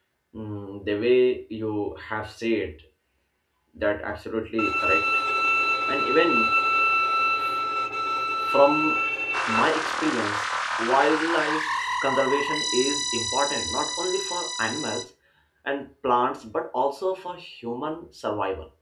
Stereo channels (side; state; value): both; identical; correlation 1.00